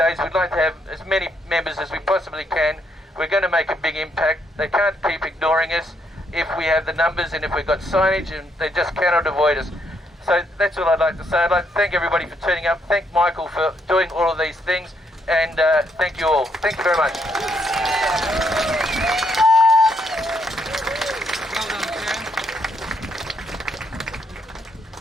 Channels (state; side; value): normal; both; correlation 0.74